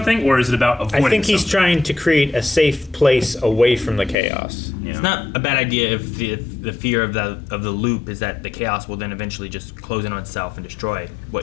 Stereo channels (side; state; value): right; drops out; at 4.2 s